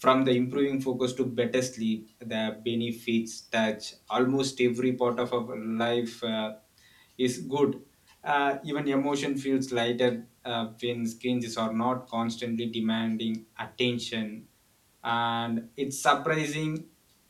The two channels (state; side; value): identical; both; correlation 1.00